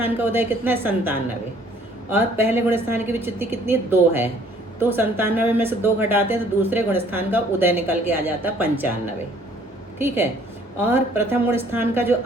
का उदय कितना है? 97, और पहले गुण स्थान की विच्युति कितनी? 2 है, तो 97 में से 2 घटाते हैं तो दूसरे गुण स्थान का उदय निकल के आ जाता है 95, ठीक है। और प्रथम गुण स्थान का जो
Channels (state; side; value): normal; both; correlation 0.59